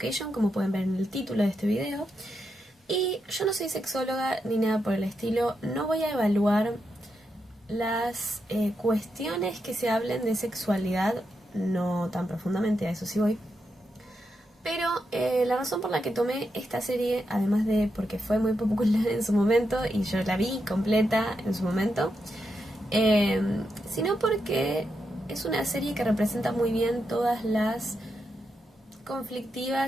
como pueden ver en el título de este video. Y yo no soy sexóloga ni nada por el estilo, no voy a evaluar las cuestiones que se hablen de sexualidad, no tan profundamente, a eso sí voy. Pero la razón por la que tomé esta serie, además de porque fue muy popular en su momento y yo la vi completa en su momento, sino porque es una serie que representa muy bien todas las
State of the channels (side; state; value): both; normal; correlation 0.84